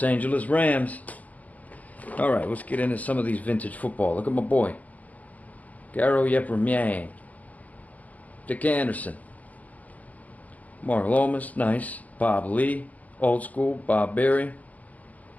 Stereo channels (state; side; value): late; right; 0.074 ms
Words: Angeles Rams. Alright, let's get into some of these vintage football. Look at my boy. Garo Yepremian. Dick Anderson. Mark Lomas, nice. Bob Lee, old school. Bob Berry.